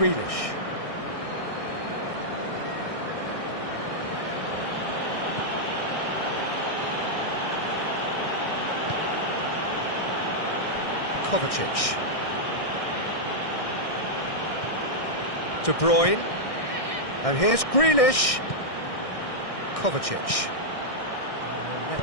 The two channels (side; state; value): right; late; 1.6 ms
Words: Kovacic. De Bruyne. And here's Grealish. Kovacic.